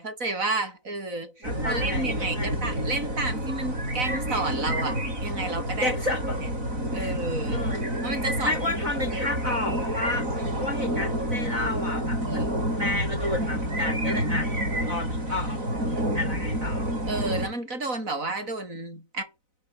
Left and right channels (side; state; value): left; late; 4.0 ms